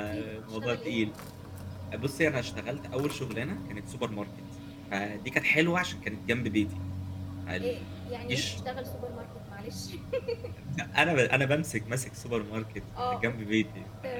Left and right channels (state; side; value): identical; both; correlation 1.00